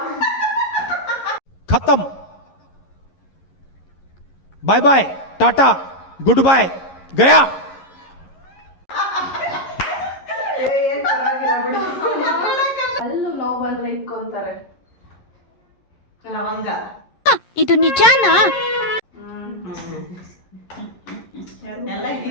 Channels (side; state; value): right; late; 11 ms